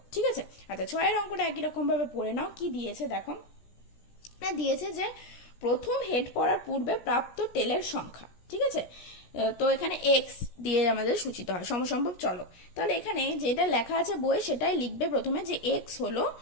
ঠিক আছে? আচ্ছা, 6 অঙ্কটা একই রকম ভাবে পড়ে নাও। কি দিয়েছে দেখো, দিয়েছে যে প্রথম হেড পড়ার পূর্বে প্রাপ্ত টেলের সংখ্যা, ঠিক আছে? তো এখানে এক্স দিয়ে আমাদের সূচিত হয় সমসম্ভব চলক। তাহলে এখানে যেটা লেখা আছে বইয়ে সেটাই লিখবে প্রথমে, যে এক্স হলো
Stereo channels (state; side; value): late; right; 17 ms